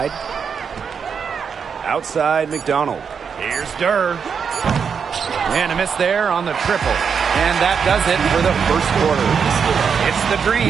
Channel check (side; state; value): left; quieter; 6.5 dB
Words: Outside McDonald. Here's Durr. And a miss there on the triple. And that does it for the first quarter. It's the